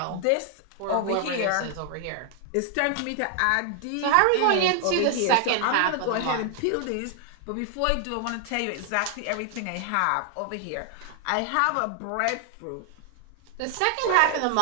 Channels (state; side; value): different; both; correlation 0.00